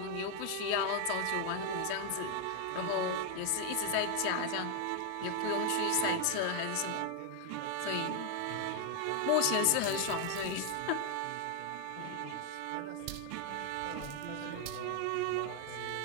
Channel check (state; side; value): different; both; correlation 0.00